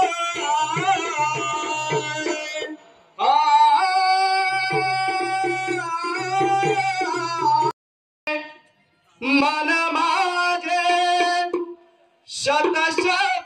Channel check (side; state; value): both; identical; correlation 1.00